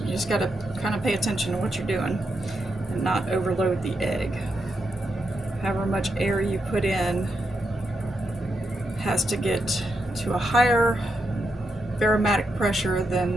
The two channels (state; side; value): normal; both; correlation 0.83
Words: just gotta kind of pay attention to what you're doing and not overload the egg. However much air you put in has to get to a higher barometric pressure